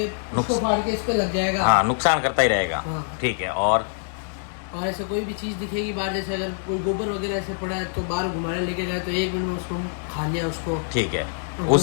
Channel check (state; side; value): silent; right; digital silence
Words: उसको फाड़ के इस पे लग जाएगा। हाँ, नुकसान करता ही रहेगा। हाँ। ठीक है, और ऐसे कोई भी चीज दिखेगी बाहर, जैसे अगर कोई गोबर वगैरह ऐसे पड़ा है तो बाहर घुमाने लेके जाए तो 1 मिनट में उसको खा लिया उसको। ठीक है,